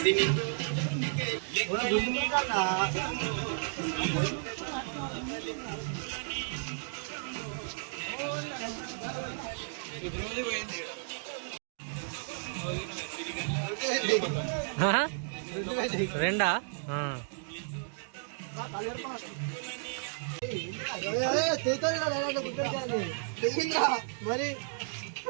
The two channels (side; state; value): left; silent; digital silence